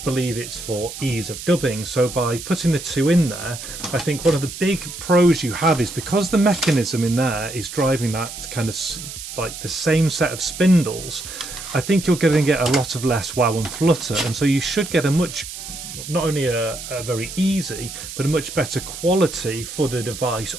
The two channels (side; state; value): right; noise; hiss, 10 dB below the sound